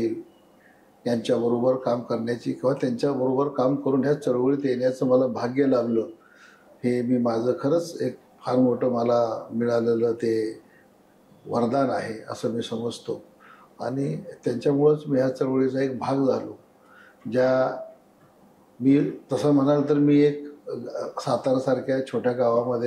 यांच्याबरोबर काम करण्याची किंवा त्यांच्याबरोबर काम करून ह्या चळवळीत येण्याचं मला भाग्य लाभलं. हे मी माझं खरंच एक फार मोठं मला मिळालेलं ते वरदान आहे असं मी समजतो आणि त्यांच्यामुळंच मी ह्या चळवळीचा एक भाग झालो. मी तसं म्हणाल तर मी एक सातारासारख्या छोट्या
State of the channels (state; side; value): identical; both; correlation 1.00